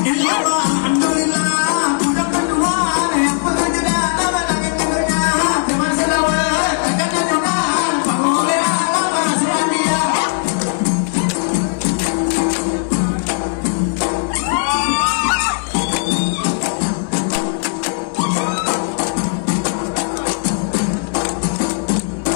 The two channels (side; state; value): right; silent; digital silence